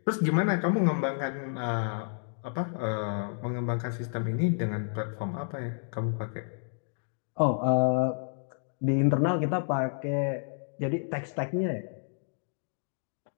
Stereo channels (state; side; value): silent; right; digital silence